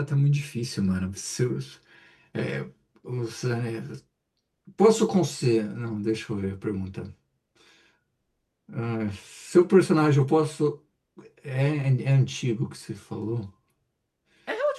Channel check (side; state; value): both; identical; correlation 1.00